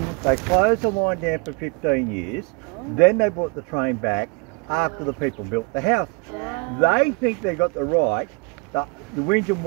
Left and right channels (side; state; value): left; quieter; 31.6 dB